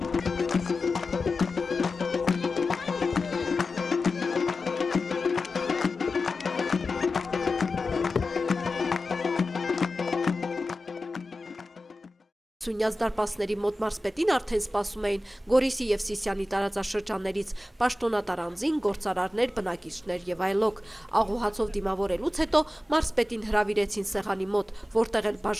Սյունյաց դարպասների մոտ մարզպետին արդեն սպասում էին Գորիսի և Սիսիանի տարածաշրջաններից, պաշտոնատար անձին, գործարարներ, բնակիչներ և այլոք։ Աղուհացով դիմավորելուց հետո մարզպետին հրավիրեցին սեղանի մոտ, որտեղ էլ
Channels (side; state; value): both; normal; correlation 0.94